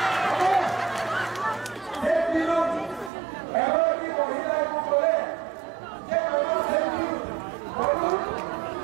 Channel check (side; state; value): left; drops out; at 3.1 s